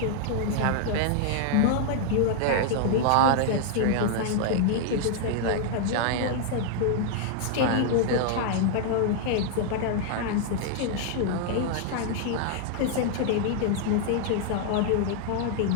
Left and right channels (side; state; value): both; different; correlation -0.01